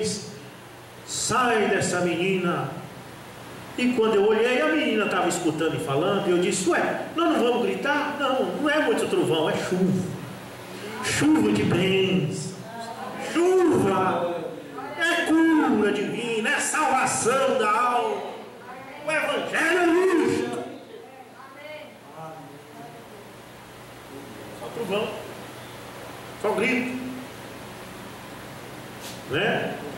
sai dessa menina. E quando eu olhei, a menina estava escutando e falando, e eu disse: ué, nós não vamos gritar? Não, não é muito trovão, é chuva. Chuva de bênçãos, chuva, é cura divina, é salvação da alma. O Evangelho é isto. Só trovão, só grito, né?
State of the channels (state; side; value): identical; both; correlation 1.00